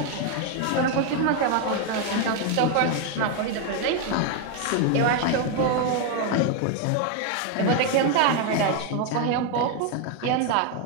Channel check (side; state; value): both; different; correlation 0.01